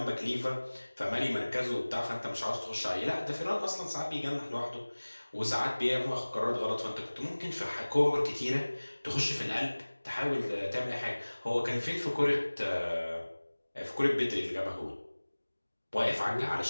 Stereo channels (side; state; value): both; inverted; correlation -1.00